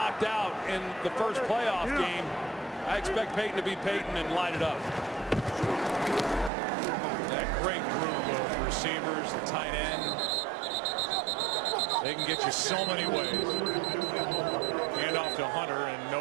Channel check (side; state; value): left; drops out; at 6.5 s